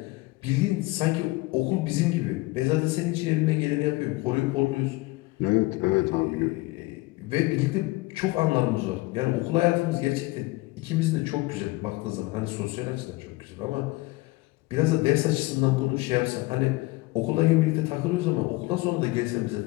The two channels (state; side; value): quieter; right; 21.6 dB